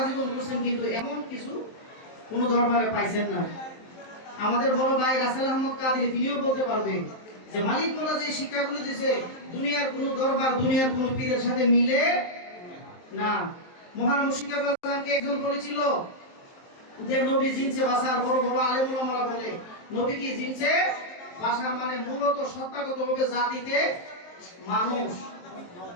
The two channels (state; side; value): late; right; 23 ms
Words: জীবন করছেন, কিন্তু এমন কিছু কোনো দরবারে পাইছেন না। আমাদের বড় ভাই রাসেল আহমদ কাদরি তিনিও বলতে পারবেন যে মালিক মোল্লা যে শিক্ষাগুলো দিয়েছে দুনিয়ার কোনো দরবার দুনিয়ার কোনো পীরের সাথে মিলে না। মহান মুর্শিদ কেবলাকে একজন বলেছিল যে নবী জিনসে বাসার বড় বড় আলেম ওলামারা বলে নবী কি জিনসে বাসা, মানে মূলত সত্তাগতভাবে জাতিতে মানুষ।